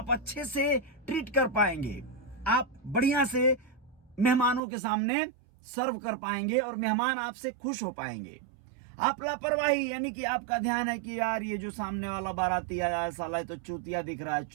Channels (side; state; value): left; drops out; at 4.6 s